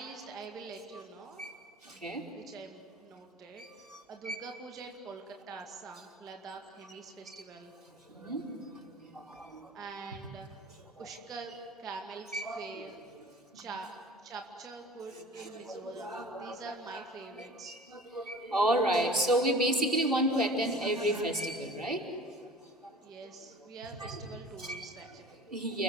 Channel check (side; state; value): both; normal; correlation 0.43